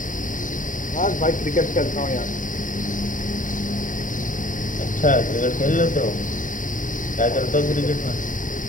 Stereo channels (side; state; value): right; late; 0.38 ms